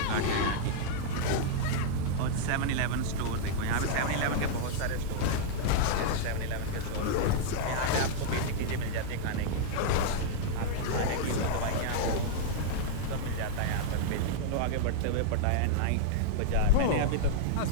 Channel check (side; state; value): both; different; correlation -0.02